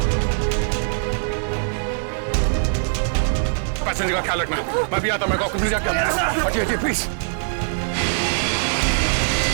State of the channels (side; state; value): left; silent; 64 dB below the other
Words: पैसेंजर का ख्याल रखना। मैं भी आता, मैं कॉकपिट जाके आता हूं। हटिए प्लीज।